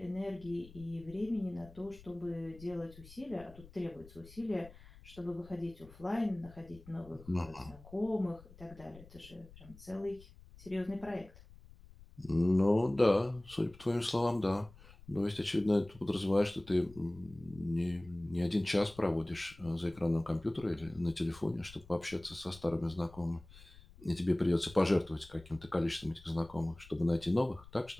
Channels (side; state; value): left; noise; rumble, 21 dB below the sound